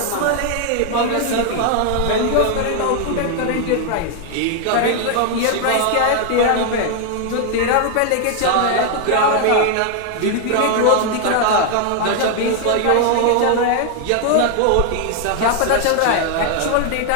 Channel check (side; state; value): both; different; correlation 0.00